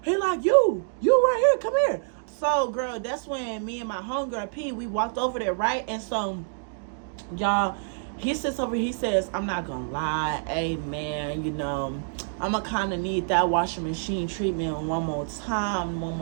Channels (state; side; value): silent; left; digital silence